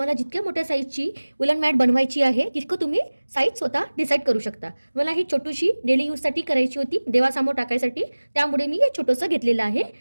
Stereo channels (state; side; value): inverted; both; correlation -1.00